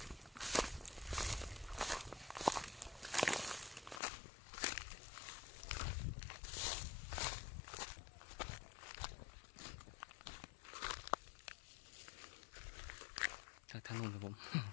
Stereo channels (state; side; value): drops out; right; at 4.0 s